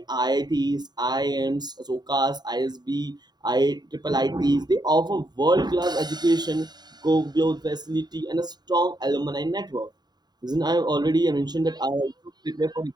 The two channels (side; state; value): left; late; 0.20 ms